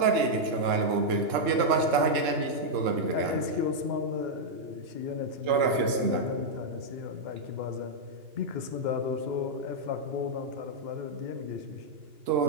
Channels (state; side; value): late; left; 2.9 ms